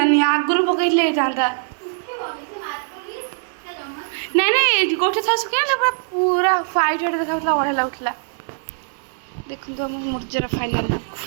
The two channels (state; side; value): silent; left; digital silence